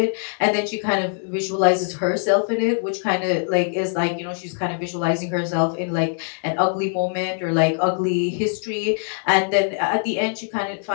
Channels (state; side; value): silent; right; 56 dB below the other